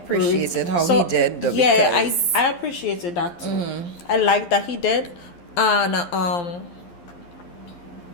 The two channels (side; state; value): right; late; 11 ms